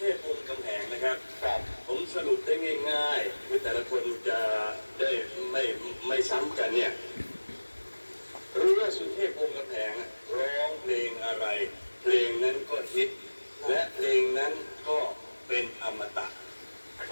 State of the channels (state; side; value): inverted; both; correlation -1.00